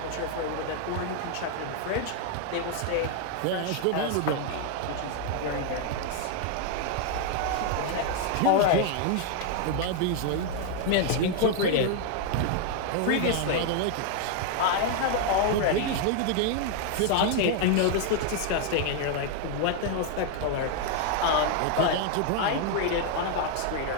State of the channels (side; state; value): both; different; correlation 0.00